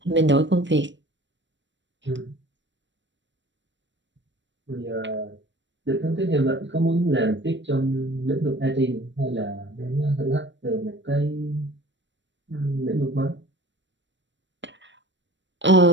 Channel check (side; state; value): left; late; 0.53 ms